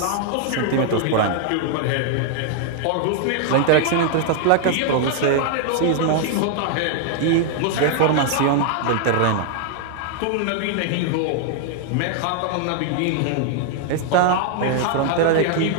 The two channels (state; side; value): different; both; correlation 0.00